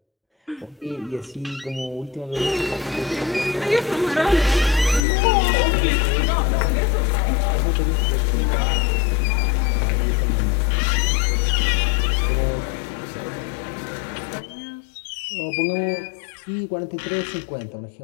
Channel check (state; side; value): drops out; right; at 5.0 s